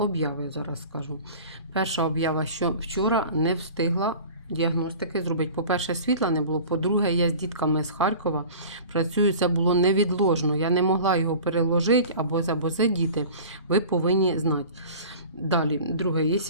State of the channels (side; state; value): both; inverted; correlation -0.40